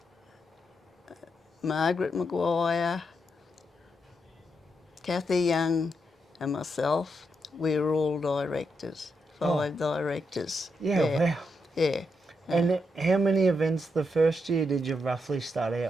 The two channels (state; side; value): normal; both; correlation 0.82